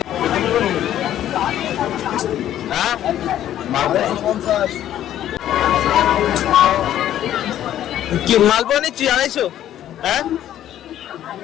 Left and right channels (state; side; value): quieter; right; 11.8 dB